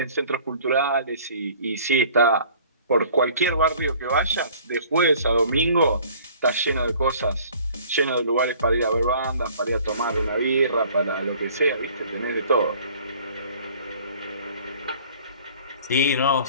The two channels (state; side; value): inverted; both; correlation -0.52